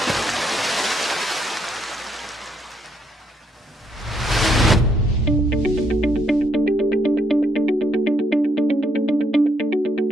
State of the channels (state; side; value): normal; both; correlation 0.74